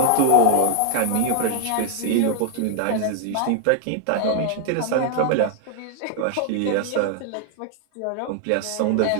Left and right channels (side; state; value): both; different; correlation 0.00